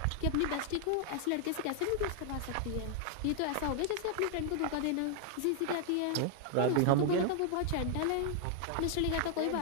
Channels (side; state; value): both; different; correlation 0.00